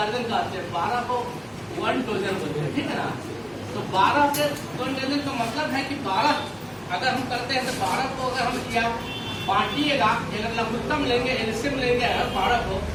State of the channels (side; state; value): both; identical; correlation 1.00